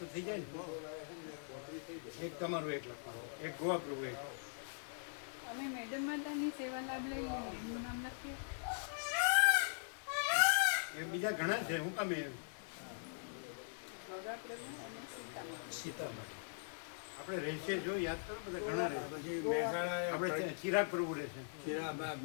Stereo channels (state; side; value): silent; right; digital silence